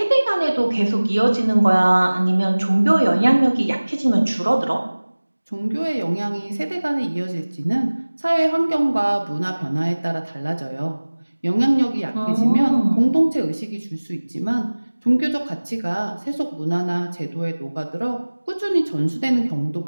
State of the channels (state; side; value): inverted; both; correlation -1.00